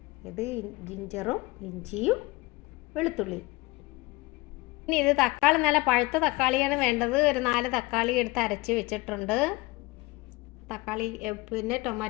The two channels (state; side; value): quieter; right; 22.6 dB